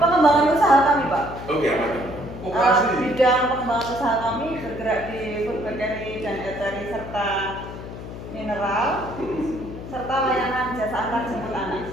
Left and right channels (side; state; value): left; noise; hum, 11 dB below the sound